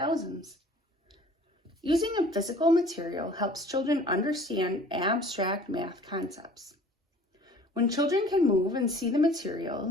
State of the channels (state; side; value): normal; both; correlation 0.49